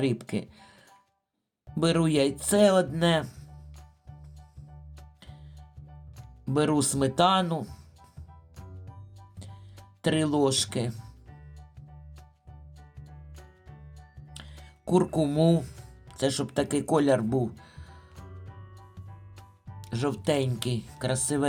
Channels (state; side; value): identical; both; correlation 1.00